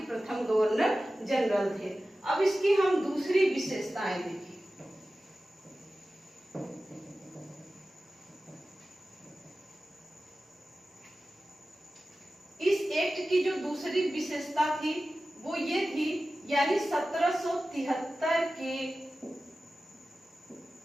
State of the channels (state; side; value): normal; both; correlation 0.95